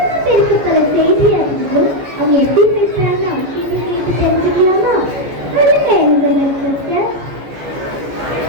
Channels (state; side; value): late; left; 14 ms